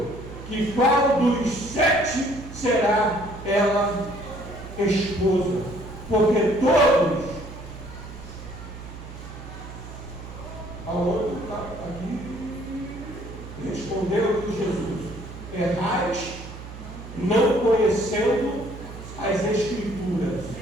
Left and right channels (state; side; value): noise; right; hum, 13 dB below the sound